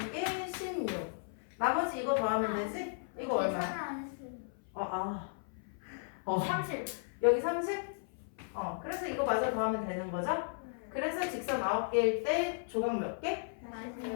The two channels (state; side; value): silent; right; 54 dB below the other